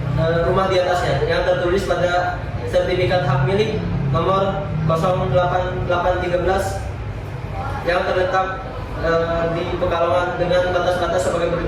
rumah di atasnya yang tertulis pada sertifikat hak milik nomor 08813 yang terletak di Pekalongan dengan batas-batas sebagai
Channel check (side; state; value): both; identical; correlation 1.00